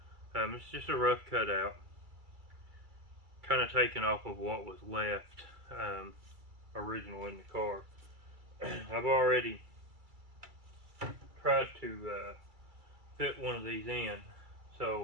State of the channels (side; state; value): left; late; 2.3 ms